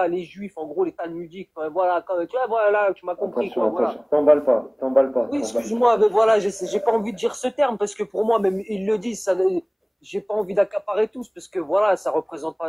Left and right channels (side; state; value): both; identical; correlation 1.00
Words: les Juifs, en gros, les Talmudiques. Voilà, tu vois, voilà, tu m'as compris, quoi, voilà. T'emballes pas. Oui, excuse-moi, mais voilà, j'ai pas envie de dire ce terme parce que pour moi, même ils le disent, ça, j'ai pas envie d'accaparer tous parce que voilà, ça représente pas